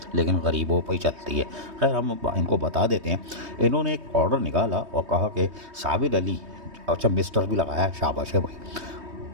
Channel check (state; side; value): late; left; 3.2 ms